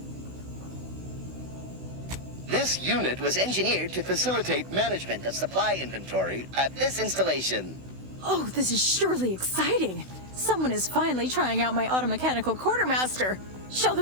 This unit was engineered to facilitate management of supply inventory at this installation. Oh, this is surely exciting. Someone is finally trying out my automechanical quartermaster. Show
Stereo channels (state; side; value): late; left; 16 ms